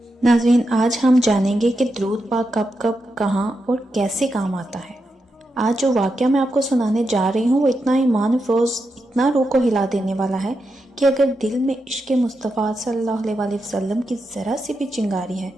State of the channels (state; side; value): normal; both; correlation 0.86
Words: ناظرین، آج ہم جانیں گے کہ درود پاک کب کب، کہاں اور کیسے کام آتا ہے۔ آج جو واقعہ میں آپ کو سنانے جا رہی ہوں وہ اتنا ایمان افروز، اتنا روح کو ہلا دینے والا ہے کہ اگر دل میں عشق مصطفیٰ صلی اللہ علیہ وسلم کی ذرا سی بھی چنگاری ہے